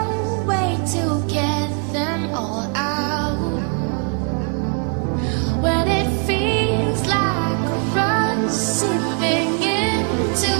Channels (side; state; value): left; quieter; 38.2 dB